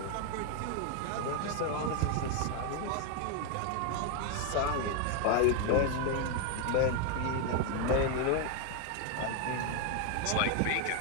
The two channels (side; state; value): both; different; correlation 0.01